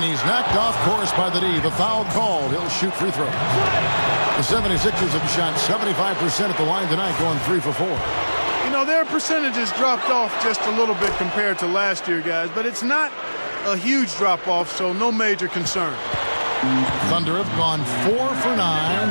he's knocked off course by the D. The foul called. He'll shoot free throws. The 76ers have shot 75% at the line tonight, going 3 for 4. You know, their percentages dropped off just a little bit compared to last year, guys, but it's not a huge drop-off, so no major concern. Thunder have gone 4 for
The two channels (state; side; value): inverted; both; correlation -1.00